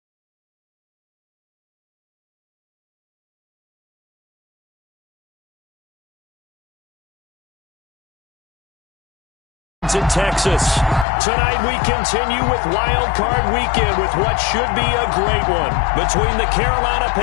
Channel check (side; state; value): right; drops out; at 11.1 s